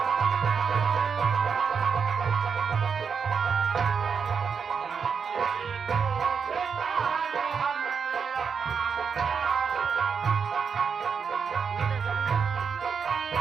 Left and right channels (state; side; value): quieter; left; 6.2 dB